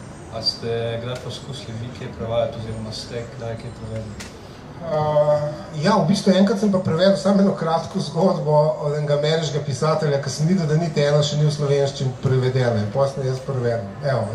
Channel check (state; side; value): identical; both; correlation 1.00